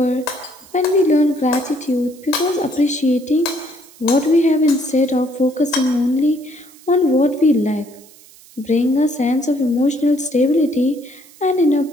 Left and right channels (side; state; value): right; noise; hiss, 24 dB below the sound